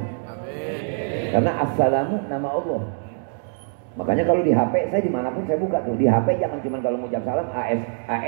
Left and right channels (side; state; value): left; silent; digital silence